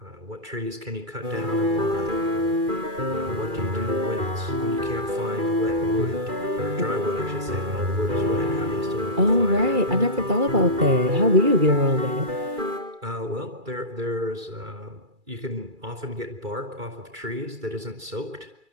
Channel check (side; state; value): left; late; 2.3 ms